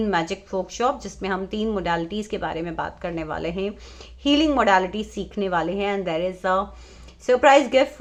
magic workshop, जिसमें हम 3 मोडालिटीज़ के बारे में बात करने वाले हैं, हीलिंग मोडालिटी सीखने वाले हैं। And there is a surprise gift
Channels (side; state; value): both; identical; correlation 1.00